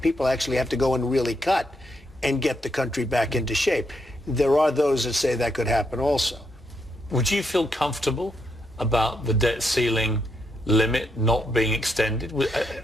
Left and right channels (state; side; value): normal; both; correlation 0.79